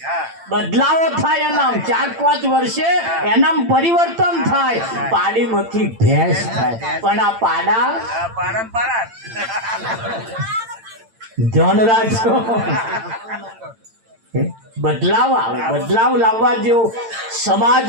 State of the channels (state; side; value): late; left; 8.9 ms